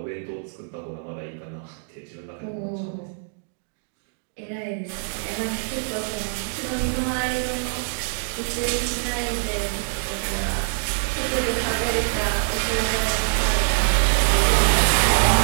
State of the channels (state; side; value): silent; left; digital silence